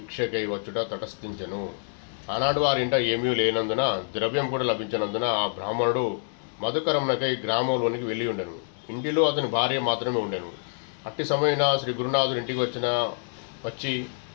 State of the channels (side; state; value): right; silent; digital silence